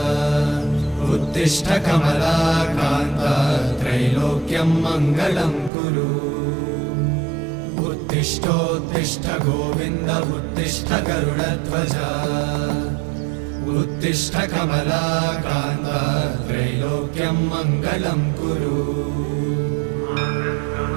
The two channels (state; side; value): drops out; left; at 5.7 s